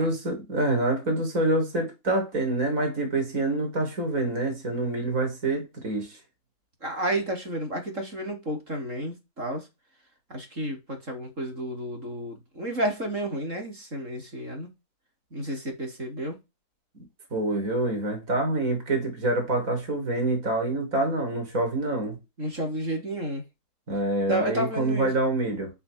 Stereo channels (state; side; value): late; left; 3.7 ms